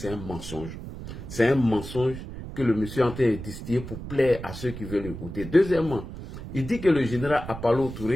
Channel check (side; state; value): right; noise; rumble, 10 dB below the sound